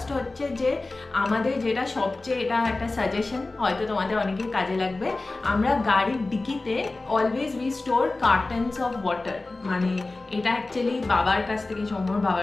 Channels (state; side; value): quieter; right; 3.2 dB